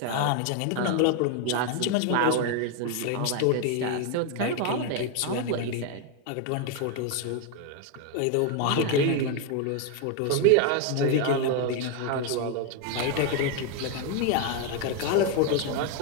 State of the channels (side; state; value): both; different; correlation 0.01